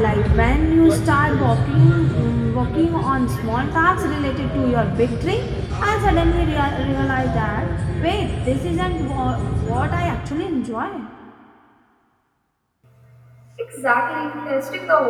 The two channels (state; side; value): identical; both; correlation 1.00